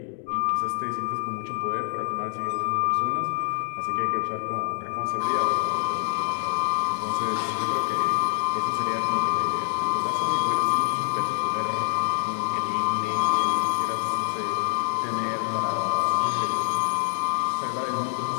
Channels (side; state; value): right; silent; 61 dB below the other